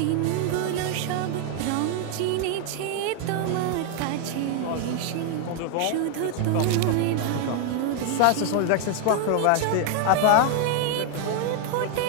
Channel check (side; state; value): both; different; correlation 0.00